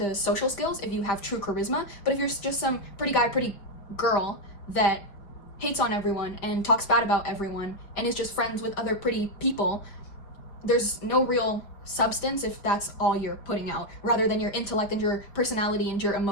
social skills if you have true charisma, but if you're just some pretty guy, pretty girl that hates on everyone and talks bad about everyone and is just friends with other pretty people, there's no real substance if that's all you're putting out, rather than your intellect and your personality and your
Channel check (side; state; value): right; late; 4.9 ms